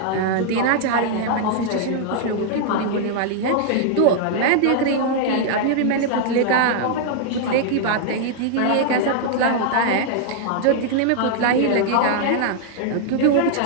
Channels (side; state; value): both; different; correlation -0.01